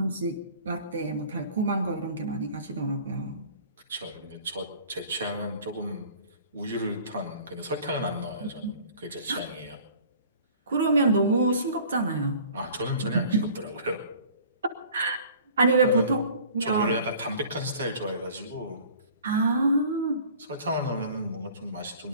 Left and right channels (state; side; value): inverted; both; correlation -0.48